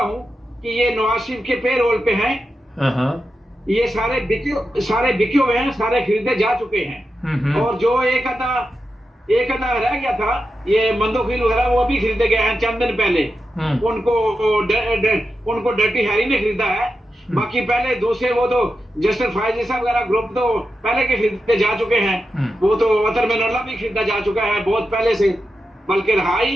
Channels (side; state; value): both; normal; correlation 0.89